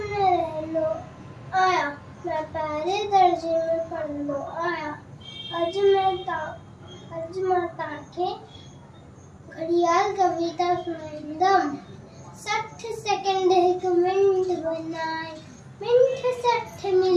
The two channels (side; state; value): both; identical; correlation 1.00